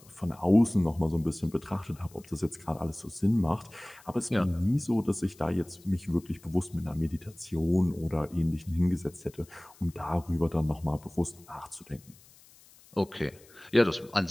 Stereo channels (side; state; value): left; noise; hiss, 25 dB below the sound